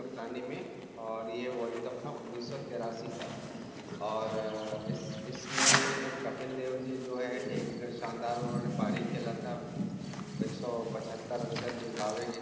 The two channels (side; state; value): both; identical; correlation 1.00